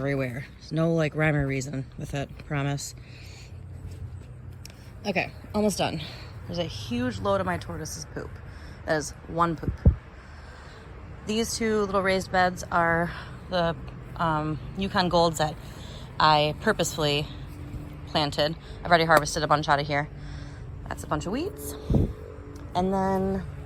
There's no like rhyme or reason with it, promise. Okay, almost done. There's a huge load of my tortoise's poop. That is one poop. These 2 little raised beds are the Yukon Golds that I purposefully planted. I've already harvested a bunch out of here. That's a bunch of weeds. And then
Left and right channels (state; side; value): identical; both; correlation 1.00